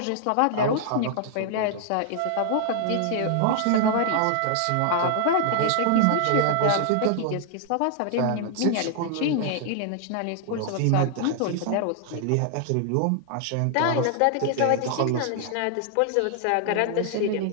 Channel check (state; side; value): different; both; correlation 0.00